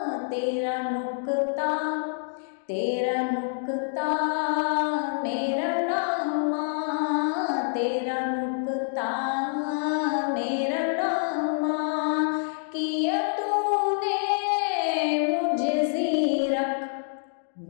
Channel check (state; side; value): silent; right; digital silence